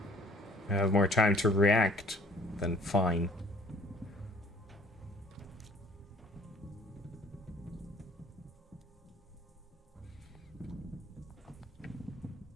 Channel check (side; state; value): both; normal; correlation 0.55